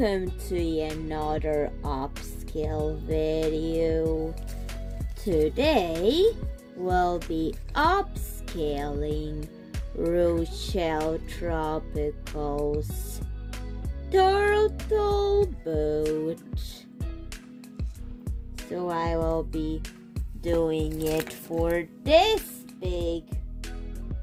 to another upscale video. Today we'll be upscaling Rochelle Tropical's turtle boat. So I will be doing it for this big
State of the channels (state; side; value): identical; both; correlation 1.00